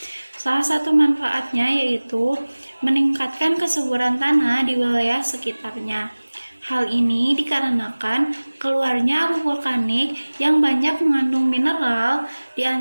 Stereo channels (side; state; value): both; inverted; correlation -1.00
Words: Salah satu manfaatnya yaitu meningkatkan kesuburan tanah di wilayah sekitarnya. Hal ini dikarenakan keluarnya abu vulkanik yang banyak mengandung mineral, di